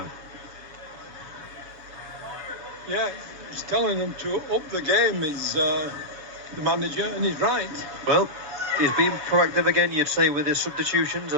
Yeah, he's telling them to up the game, is the manager, and he's right. Well, he's been proactive again, you'd say, with his substitutions,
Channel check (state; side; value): late; left; 7.2 ms